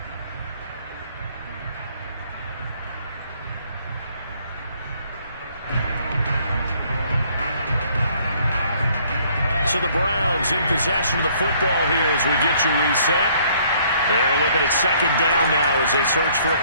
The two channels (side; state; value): both; inverted; correlation -0.62